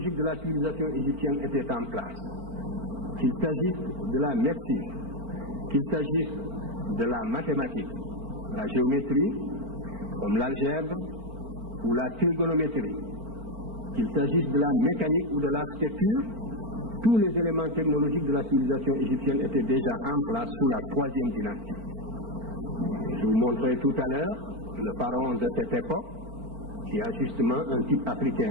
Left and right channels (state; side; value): late; left; 4.4 ms